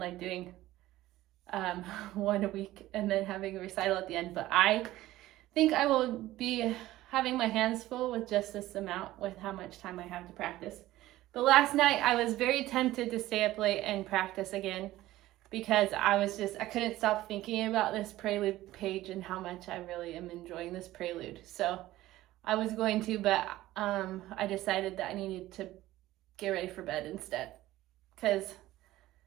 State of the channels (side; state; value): left; quieter; 16.0 dB